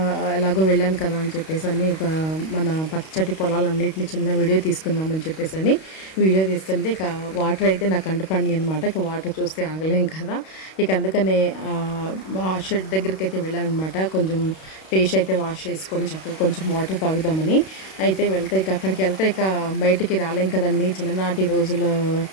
ఎలాగో వెళ్ళాను కదా అని చెప్పేసి ఒక మన పచ్చటి పొలాలన్నిటిని చిన్న వీడియో తీసుకుందామని చెప్పేసి వీడియో తీస్తుంటే ఇక వాటర్ అయితే నాకు కంటపడినాయి అనమాట. ఇక వాటర్ చూస్తే ఆగలేం కదా. ఇక అందుకనే ఆ షెడ్ దగ్గరికి అయితే వెళ్ళాను అనమాట. కొంచెం ఫేస్ అయితే వాష్ చేసుకొని చక్కగా కొంచెం వాటర్ తాగుదామని అయితే వెళ్తే ఇక అక్కడికి వెళ్తే ఇక బయటికి రాలేం కదండి. చిన్ననాటి రోజులు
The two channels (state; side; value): late; right; 32 ms